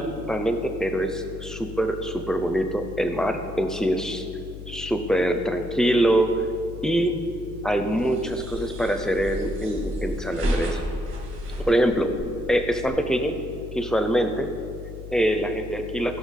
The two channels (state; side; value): noise; left; hum, 12 dB below the sound